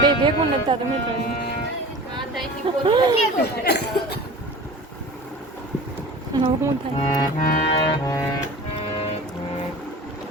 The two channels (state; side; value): normal; both; correlation 0.38